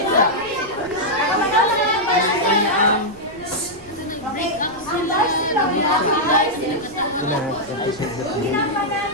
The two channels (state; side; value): noise; right; rumble, 22 dB below the sound